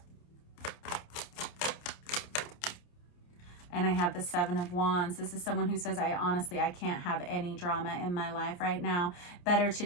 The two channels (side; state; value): right; late; 28 ms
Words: And I have the Seven of Wands. This is someone who says, I can't have any drama in my life right now. Better to